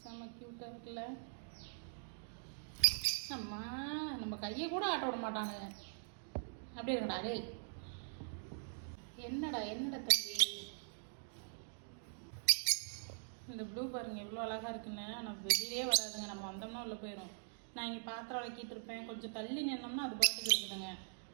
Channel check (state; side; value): silent; left; digital silence